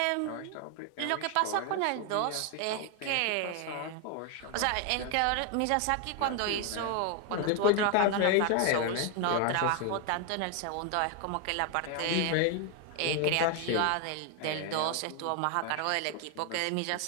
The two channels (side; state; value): both; different; correlation 0.00